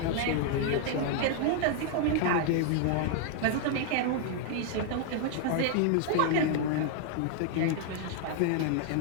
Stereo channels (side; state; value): both; different; correlation -0.01